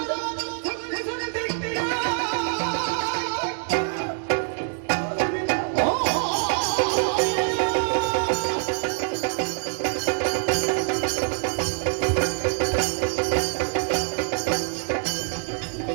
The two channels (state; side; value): silent; left; 62 dB below the other